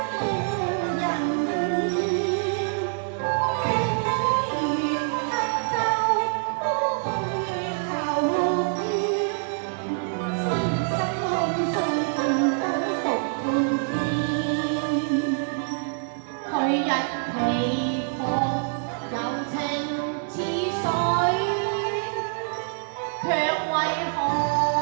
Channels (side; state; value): left; silent; 61 dB below the other